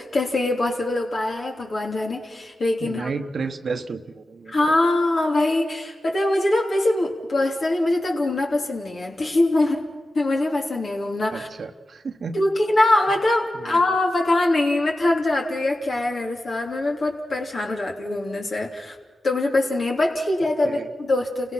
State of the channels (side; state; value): both; normal; correlation 0.93